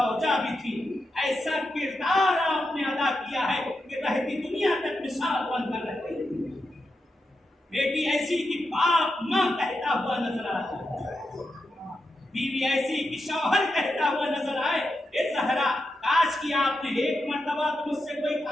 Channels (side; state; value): both; normal; correlation 0.87